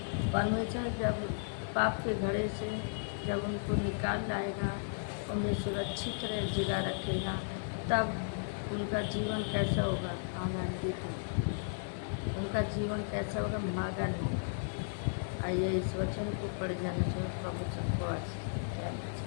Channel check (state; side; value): silent; right; digital silence